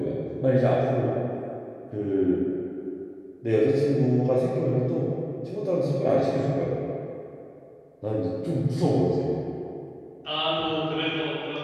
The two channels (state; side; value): identical; both; correlation 1.00